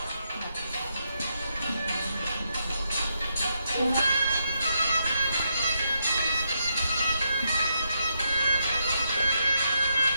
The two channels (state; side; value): inverted; both; correlation -0.80